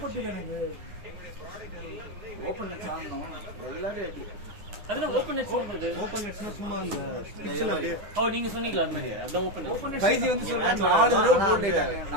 பட்டுது எனக்கு. ஓபன் சாங்கணும் எல்லாரும் அடி. அதுல ஓபன் நெட்ஸ் வந்து ஓபன் நெட்ஸ்னா சும்மா அந்த பிட்ச்ல அப்படியே நீங்க சொன்னீங்களா அந்த மாதிரி? அதான் ஓபன் நெட்ஸ். ஃபைஜி வந்து சொல்றாங்க 4 தடவை அவுட் ஆயிட்டாங்க.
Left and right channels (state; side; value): late; left; 10 ms